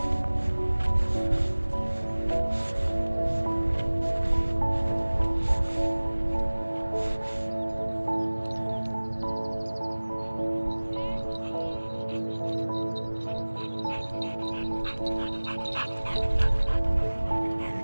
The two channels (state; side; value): inverted; both; correlation -1.00